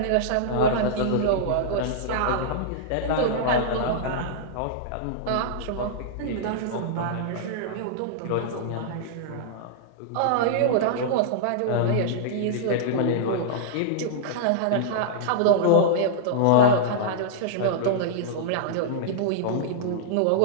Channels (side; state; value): both; different; correlation -0.02